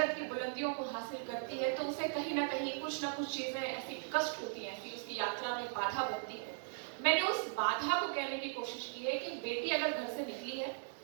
की बुलंदियों को हासिल करती है तो उसे कहीं ना कहीं कुछ ना कुछ चीजें ऐसी कष्ट होती हैं, ऐसी उसकी यात्रा में बाधा बनती है. मैंने उस बाधा को कहने की कोशिश की है कि बेटी अगर घर से निकली है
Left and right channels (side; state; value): left; silent; 52 dB below the other